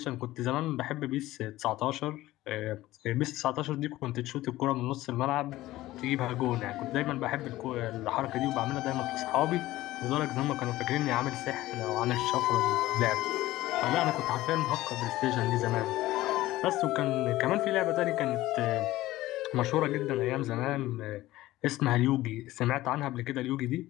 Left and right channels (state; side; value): quieter; right; 16.6 dB